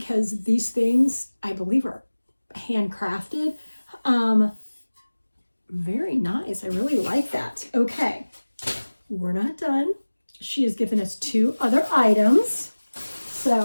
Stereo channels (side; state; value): both; inverted; correlation -1.00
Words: these things, I believe, are handcrafted. Very nice. I really like that. Okay, we're not done. She has given us 2 other items.